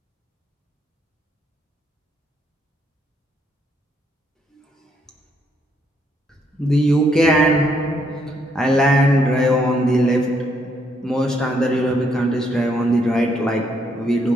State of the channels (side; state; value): both; normal; correlation 0.73